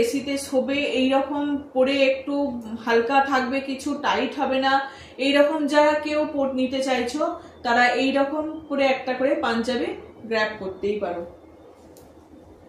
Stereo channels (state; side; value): identical; both; correlation 1.00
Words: এসিতে শোবে, এইরকম পরে একটু হালকা থাকবে, কিছু টাইট হবে না, এইরকম যারা কেউ নিতে চাইছো তারা এইরকম করে একটা করে পাঞ্জাবি গ্র্যাব করতেই পারো।